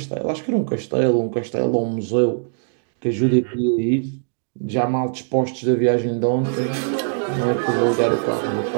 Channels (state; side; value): silent; left; digital silence